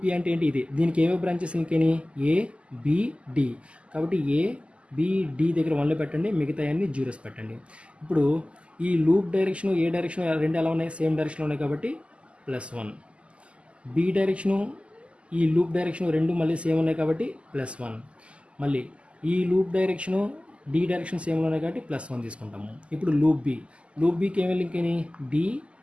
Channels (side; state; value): left; late; 0.056 ms